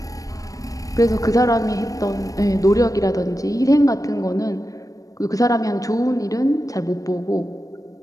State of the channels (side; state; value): right; late; 0.16 ms